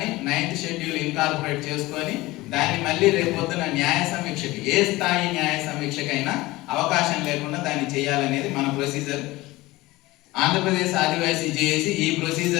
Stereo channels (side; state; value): right; quieter; 19.6 dB